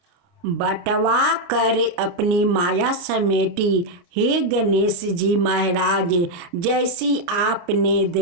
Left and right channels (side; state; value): left; late; 29 ms